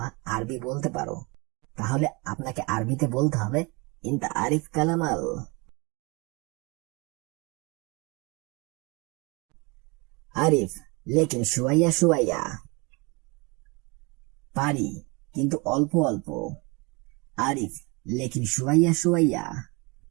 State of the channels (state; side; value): quieter; left; 28.0 dB